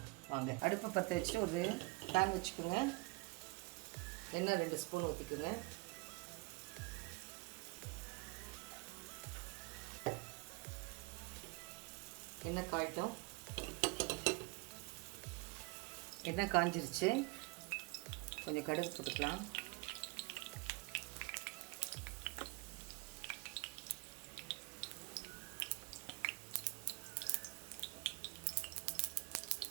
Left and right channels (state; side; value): quieter; left; 26.4 dB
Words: வாங்க. அடுப்பை பற்ற வச்சுட்டு ஒரு பேன் வச்சுக்கோங்க. எண்ணெய் 2 ஸ்பூன் ஊற்றிக்குங்க. எண்ணெய் காயிட்டோம். எண்ணெய் காஞ்சிருச்சு. கொஞ்சம் கடுகு போட்டுக்கலாம்.